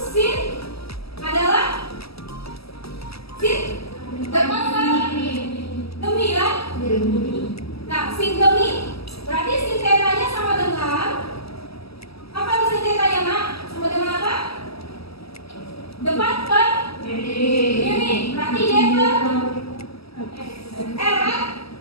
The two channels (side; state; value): right; late; 0.76 ms